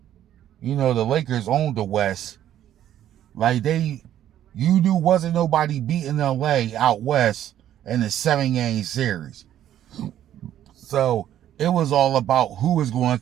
You know, the Lakers owned the West. Like you knew wasn't nobody beating LA out West in the 7-game series. So it was all about who was going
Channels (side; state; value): left; quieter; 11.5 dB